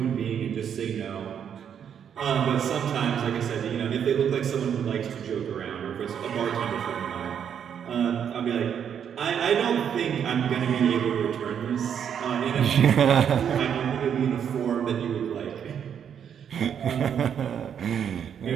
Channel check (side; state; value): left; quieter; 8.3 dB